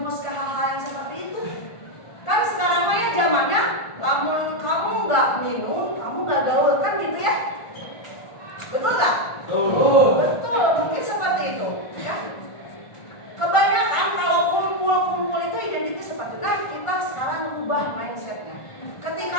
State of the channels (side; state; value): right; late; 1.5 ms